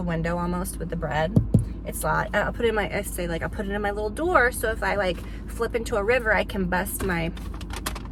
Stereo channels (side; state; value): both; identical; correlation 1.00